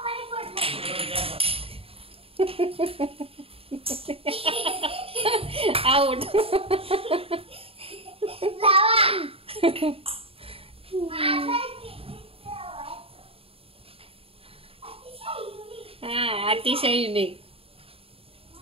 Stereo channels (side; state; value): left; late; 0.27 ms